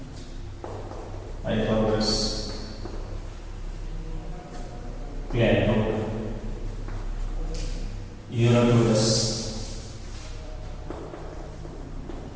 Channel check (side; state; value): both; identical; correlation 1.00